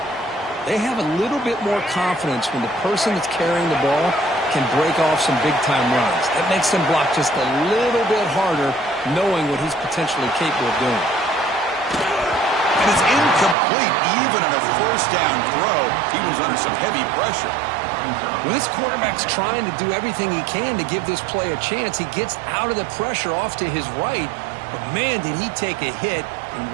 they have a little bit more confidence when the person that's carrying the ball can break off some big-time runs. That makes them block just a little bit harder, knowing what he's potentially capable of doing. And it's incomplete. Even on a 1st down throw, he was under some heavy pressure. When this quarterback's trying to do everything he can to give this play a chance, he gets out of the pressure off to his right, but man, did he take a hit and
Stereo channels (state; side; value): drops out; left; at 13.6 s